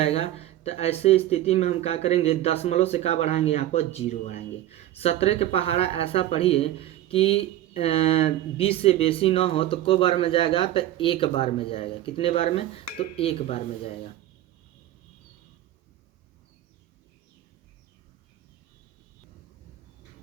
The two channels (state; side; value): quieter; left; 13.6 dB